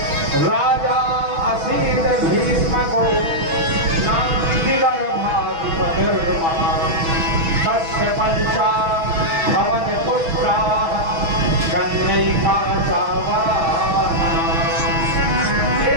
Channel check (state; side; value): late; left; 6.2 ms